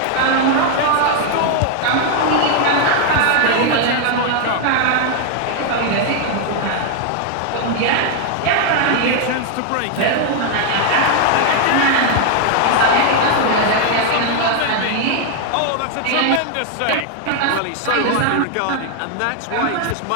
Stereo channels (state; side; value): different; both; correlation 0.00